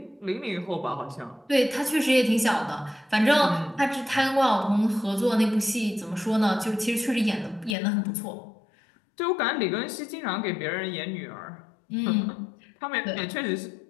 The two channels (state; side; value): drops out; right; at 7.8 s